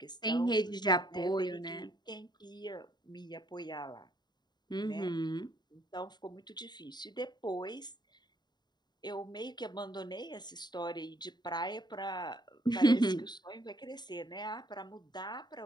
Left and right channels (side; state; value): right; late; 0.21 ms